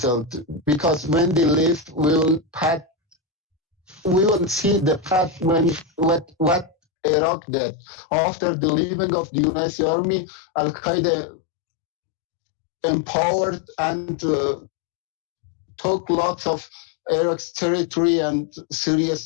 because when they leave, we will see the path when what Iraq did. After the leaving of the United States Army, Al Qaeda empowered and took lots of Iraq's territory and Syria's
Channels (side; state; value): right; drops out; at 6.8 s